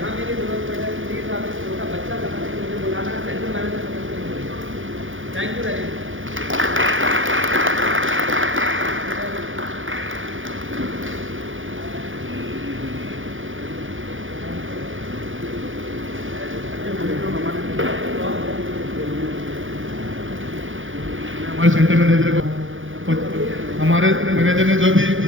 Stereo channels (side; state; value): left; late; 0.58 ms